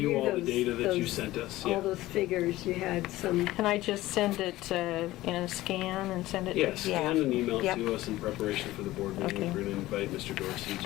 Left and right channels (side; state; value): right; quieter; 16.9 dB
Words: all the those- data that you those- sent us? All Yeah. those figures, you had some, Can I just send it in a scan and send it? Yes, scan and email it Yep. to us in preparation for the board meeting. Okay. We're going to invite Mr. Dorsey